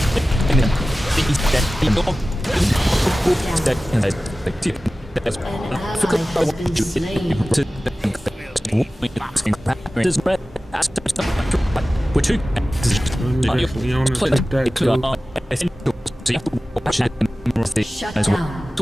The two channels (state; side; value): normal; both; correlation 0.96